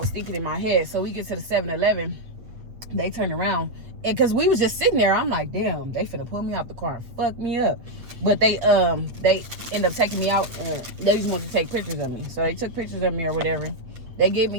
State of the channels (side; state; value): left; late; 8.3 ms